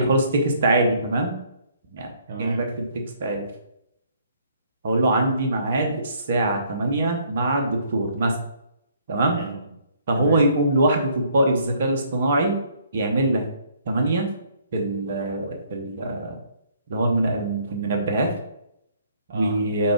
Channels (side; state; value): both; inverted; correlation -0.64